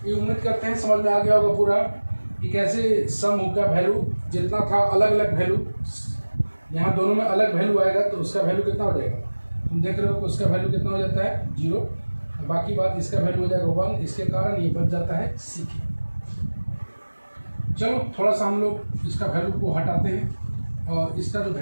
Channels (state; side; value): inverted; both; correlation -1.00